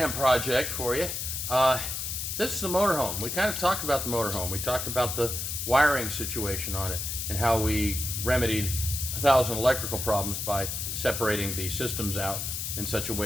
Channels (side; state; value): left; noise; hiss, 3 dB below the sound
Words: project for you. This is the motorhome. We kind of talked about the motorhome. We talked about the wiring situation on it and how we remedied 1,000 electrical problems by separating the systems out in such a